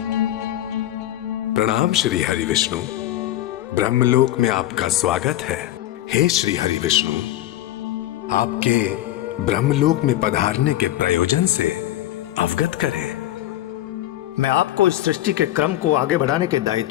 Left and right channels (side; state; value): right; quieter; 14.0 dB